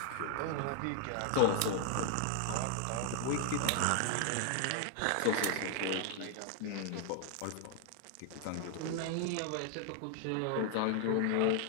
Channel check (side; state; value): both; different; correlation 0.00